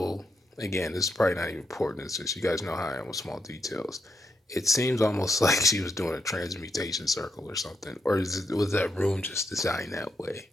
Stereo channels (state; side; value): normal; both; correlation 0.81